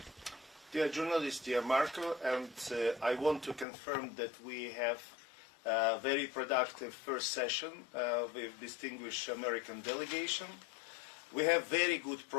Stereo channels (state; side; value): drops out; right; at 3.7 s